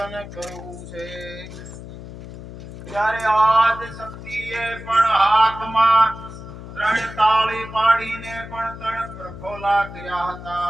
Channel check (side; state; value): left; noise; hum, 13 dB below the sound